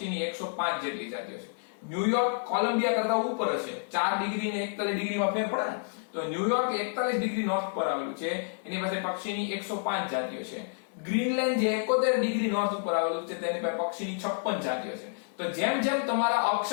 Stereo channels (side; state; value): right; silent; digital silence